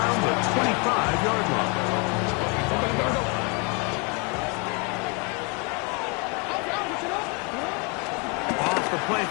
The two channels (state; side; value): quieter; right; 31.7 dB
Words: the 25-yard line. Off the play